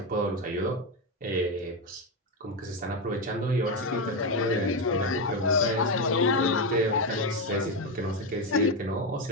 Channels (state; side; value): normal; both; correlation 0.10